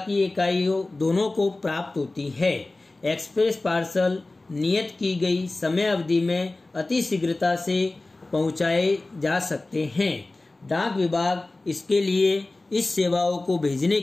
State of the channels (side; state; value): right; quieter; 3.0 dB